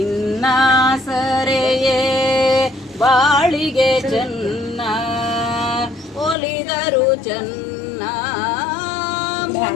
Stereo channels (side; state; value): right; drops out; at 6.4 s